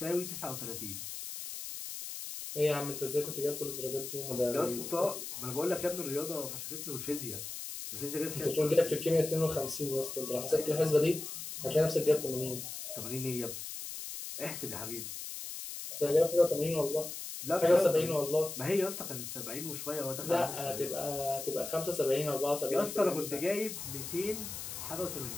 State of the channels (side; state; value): left; noise; hiss, 8 dB below the sound